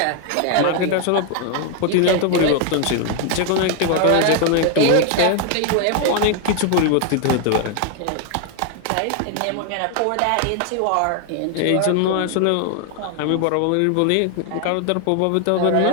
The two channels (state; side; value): different; both; correlation 0.01